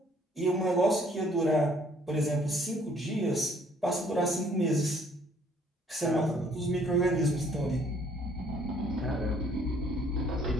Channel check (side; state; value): both; normal; correlation 0.62